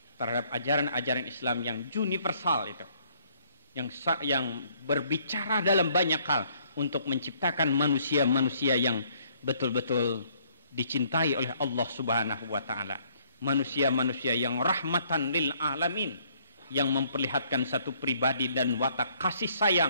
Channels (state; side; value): inverted; both; correlation -0.64